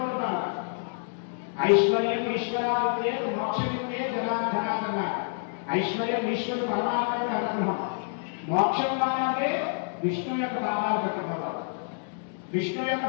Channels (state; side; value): silent; right; digital silence